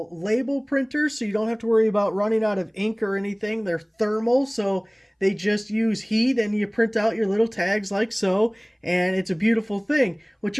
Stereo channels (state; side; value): identical; both; correlation 1.00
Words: label printers, so you don't have to worry about running out of ink or anything. They're thermal, so they just use heat and you print out your little tags like so, and it's a beautiful thing. What